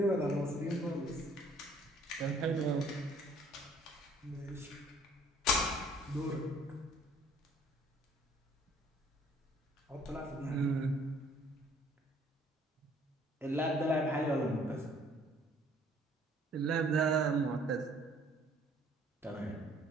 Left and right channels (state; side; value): normal; both; correlation 0.58